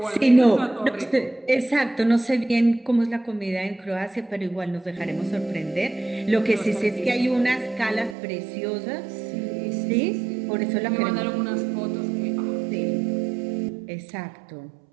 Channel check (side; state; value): left; drops out; at 8.2 s